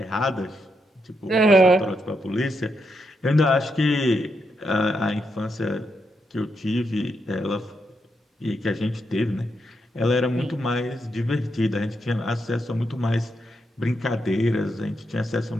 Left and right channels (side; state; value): both; normal; correlation 0.82